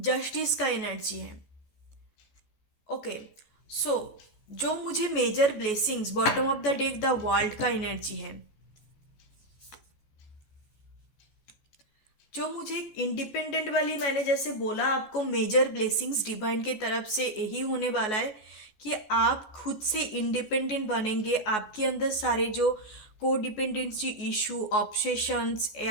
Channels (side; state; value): right; late; 14 ms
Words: का एनर्जी है। ओके, सो जो मुझे major blessings bottom of the deck the world का एनर्जी है, जो मुझे इंडिपेंडेंट वाली, मैंने जैसे बोला आपको मेजर ब्लेसिंग्स डिवाइन के तरफ से यही होने वाला है कि आप खुद से इंडिपेंडेंट बनेंगे। आपके अंदर सारे जो को डिपेंडेंसी इशू, ऑब्सेशंस